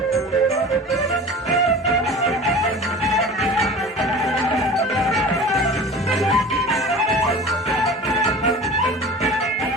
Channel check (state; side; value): normal; both; correlation 0.38